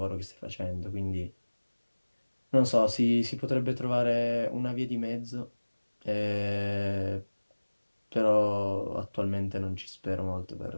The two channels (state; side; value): inverted; both; correlation -1.00